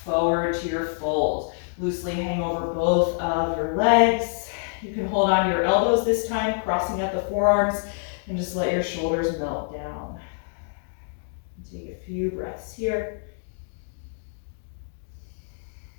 forward to your fold. Loosely hang over both of your legs. You can hold on to your elbows this time, crossing out the forearms, and just let your shoulders melt down. Take a few breaths here.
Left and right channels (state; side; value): silent; right; digital silence